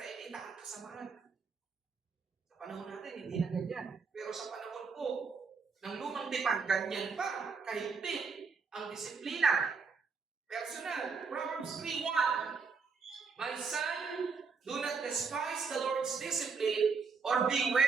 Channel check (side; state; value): left; quieter; 5.1 dB